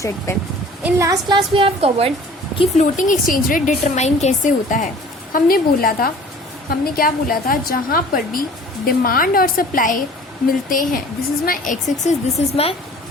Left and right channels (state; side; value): normal; both; correlation 0.48